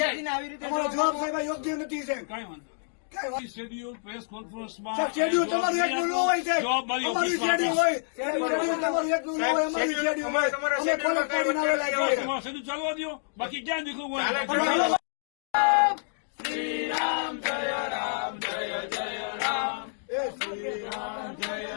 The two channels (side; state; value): right; silent; digital silence